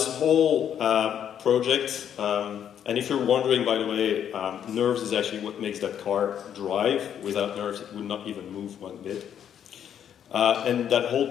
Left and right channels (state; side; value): quieter; right; 9.2 dB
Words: whole project, and if you're wondering, by the way, Nerves is actually what makes that car drive. Without Nerves, it would not even move one bit. And that whole